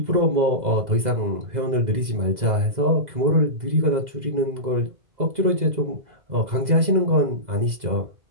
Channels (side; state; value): left; late; 2.0 ms